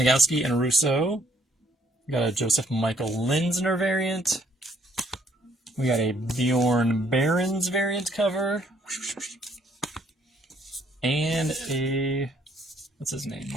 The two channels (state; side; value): normal; both; correlation 0.65